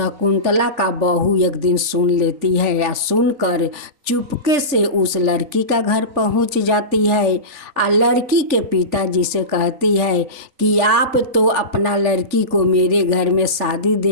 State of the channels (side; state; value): left; late; 3.5 ms